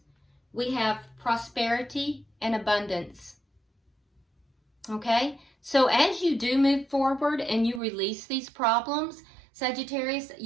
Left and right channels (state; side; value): drops out; left; at 7.8 s